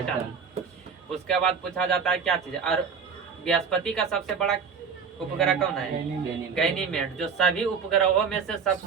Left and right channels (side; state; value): left; quieter; 6.2 dB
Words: उसके बाद पूछा जाता है क्या चीज? और बृहस्पति का सबसे बड़ा उपग्रह कौन है? गैनीमेड। जो सभी उपग्रहों में से